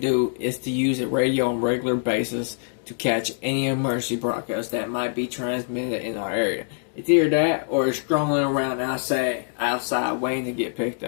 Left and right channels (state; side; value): silent; right; digital silence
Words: to do, is to use a radio on a regular basis to catch any emergency broadcasts that might be transmitted in our area. It's either that or it's strolling around outside waiting to get picked